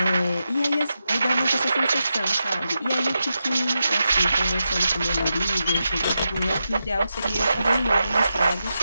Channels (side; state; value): both; inverted; correlation -0.88